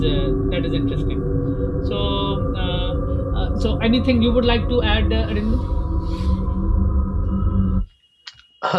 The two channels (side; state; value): both; identical; correlation 1.00